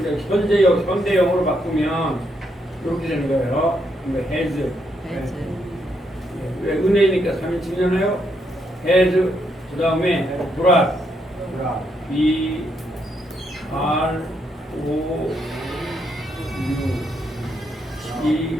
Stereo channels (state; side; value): normal; both; correlation 0.77